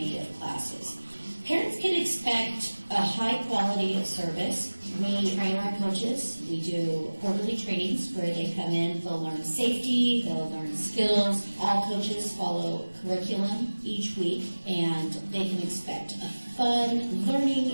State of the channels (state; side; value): inverted; both; correlation -1.00